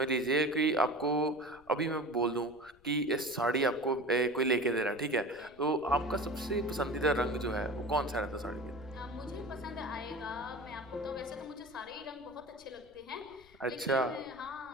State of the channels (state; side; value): noise; left; rumble, 28 dB below the sound